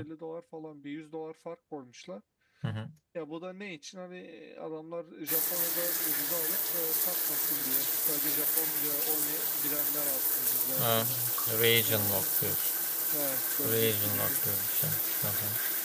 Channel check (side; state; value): both; identical; correlation 1.00